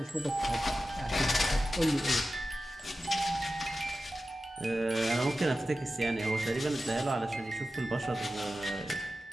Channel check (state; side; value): normal; both; correlation 0.93